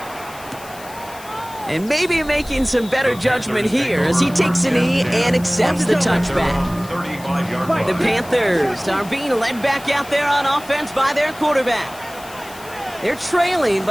And maybe making some better judgment here as he takes a knee and accepts the touchback. The Panthers are being led back out there on offense by their quarterback. They're trailing,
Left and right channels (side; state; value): left; noise; hiss, 19 dB below the sound